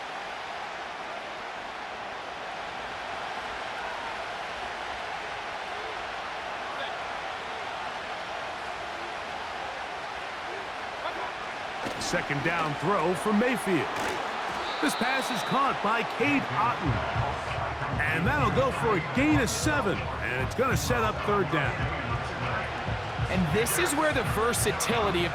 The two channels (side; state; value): both; identical; correlation 1.00